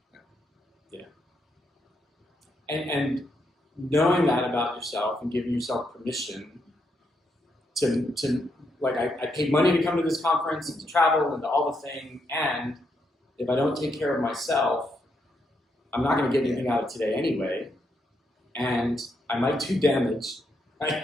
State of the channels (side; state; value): both; normal; correlation 0.79